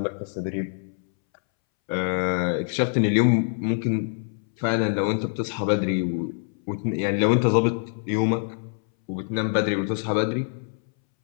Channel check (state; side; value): silent; right; 62 dB below the other